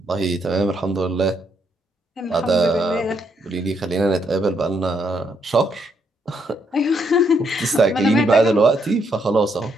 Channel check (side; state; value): both; normal; correlation 0.74